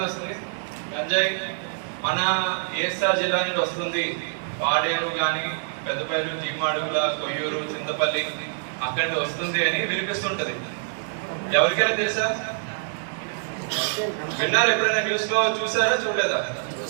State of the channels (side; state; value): left; silent; digital silence